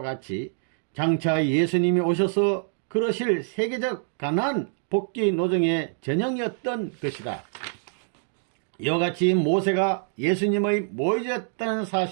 같이 장차 예수님이 오셔서 그러실 세계적 가나안 복귀 노정의 전형이었던 것이다. 이와 같이 모세가 예수님의 모의자였다는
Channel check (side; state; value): left; silent; digital silence